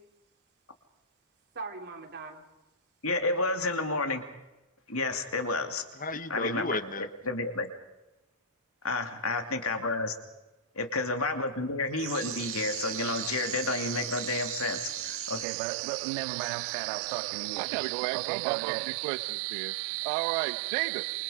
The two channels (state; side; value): drops out; left; at 15.5 s